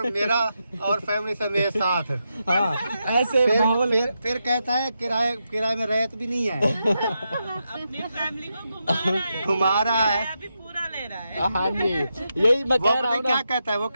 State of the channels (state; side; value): inverted; both; correlation -0.85